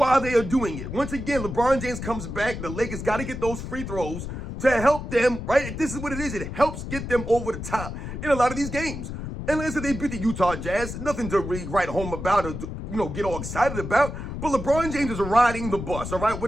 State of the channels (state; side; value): noise; left; rumble, 7 dB below the sound